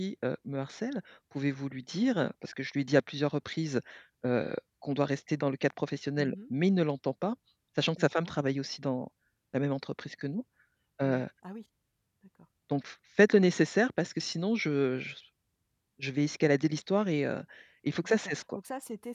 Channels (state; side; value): identical; both; correlation 1.00